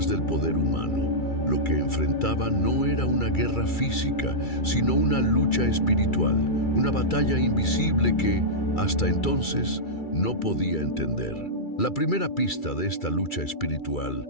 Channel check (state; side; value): late; right; 2.3 ms